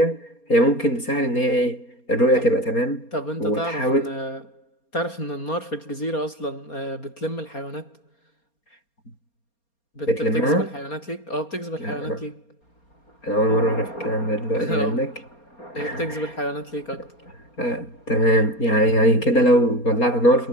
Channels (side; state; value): right; late; 4.3 ms